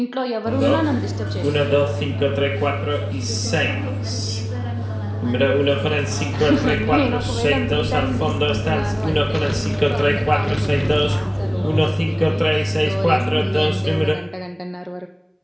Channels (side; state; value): both; identical; correlation 1.00